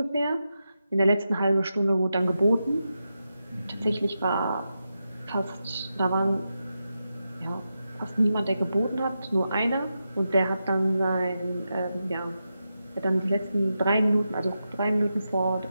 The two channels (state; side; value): inverted; both; correlation -0.88